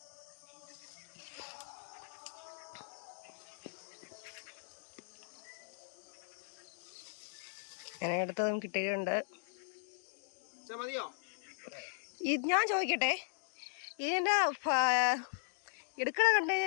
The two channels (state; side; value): silent; right; digital silence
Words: അങ്ങനെ അടുത്തതും കിട്ടിയിട്ടുണ്ട്. മതിയോ? ഞാൻ ചോദിക്കട്ടെ, ഇതിൻ്റെ എടുക്കണ കണ്ടു